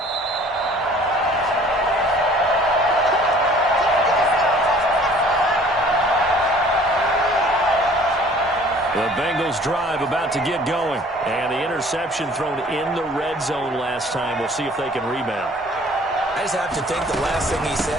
The Bengals drive about to get going, and the interception thrown in the red zone last time. We'll see if they can rebound. I just have to think the last thing he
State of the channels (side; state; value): both; normal; correlation 0.52